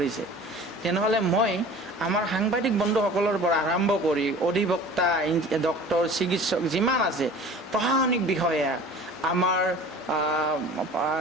তেনেহ'লে মই আমাৰ সাংবাদিক বন্ধুসকলৰ পৰা আৰম্ভ কৰি অধিবক্তা, ডক্টৰ, চিকিৎসক যিমান আছে, প্ৰশাসনিক বিষয়া, আমাৰ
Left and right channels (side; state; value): both; normal; correlation 0.43